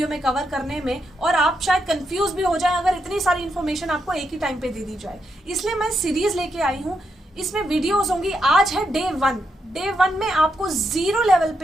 में कवर करने में, और आप शायद कंफ्यूज भी हो जाए अगर इतनी सारी इन्फॉर्मेशन आपको एक ही टाइम पे दे दी जाए। इसलिए मैं सीरीज लेके आई हूँ, इसमें वीडियोज होंगी। आज है डे 1 में आपको जीरो लेवल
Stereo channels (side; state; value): both; normal; correlation 0.81